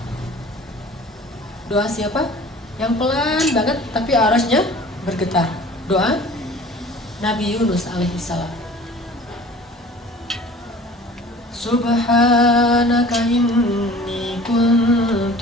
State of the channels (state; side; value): normal; both; correlation 0.46